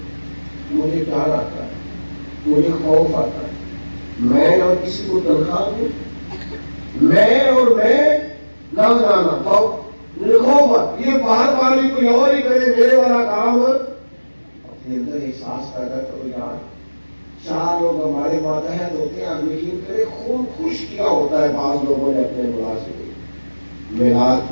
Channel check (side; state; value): both; inverted; correlation -1.00